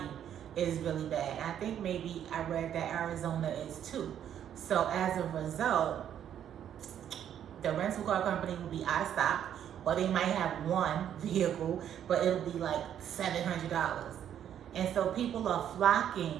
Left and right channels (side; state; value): left; quieter; 9.8 dB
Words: is really bad. I think maybe I read that Arizona is too. So as a result, the rental car company will be out of stock, or they might have one vehicle, but it'll be like $700. And so people are